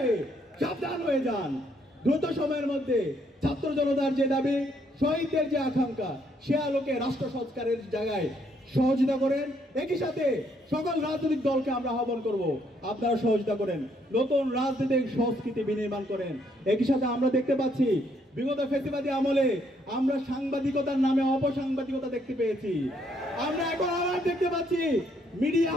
সাবধান হয়ে যান। দ্রুত সময়ের মধ্যে ছাত্র জনতার যে দাবি, শহীদদের যে আকাঙ্ক্ষা, সে আলোকে রাষ্ট্র সংস্কারের জায়গায় সহযোগিতা করেন। একই সাথে সকল রাজনৈতিক দলকে আমরা আহ্বান করব, আপনারা সহযোগিতা করেন, নতুন রাজনৈতিক সংস্কৃতি বিনির্মাণ করেন। একই সাথে আমরা দেখতে পাচ্ছি বিগত ফ্যাসিবাদী আমলে আমরা সাংবাদিকতার নামে অপসাংবাদিকতা দেখতে পেয়েছি। আমরা এখন আবার দেখতে পাচ্ছি মিডিয়া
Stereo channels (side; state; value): both; normal; correlation 0.71